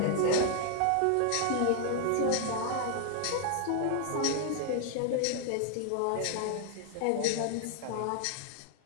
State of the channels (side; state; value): both; different; correlation 0.00